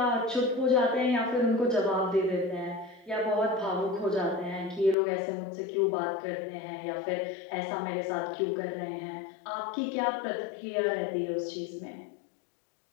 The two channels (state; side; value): drops out; right; at 5.0 s